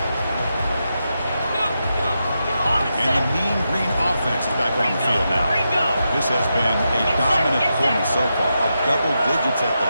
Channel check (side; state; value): both; inverted; correlation -0.87